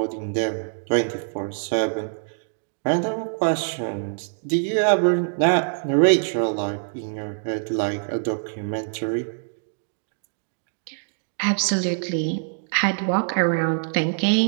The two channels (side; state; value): left; silent; digital silence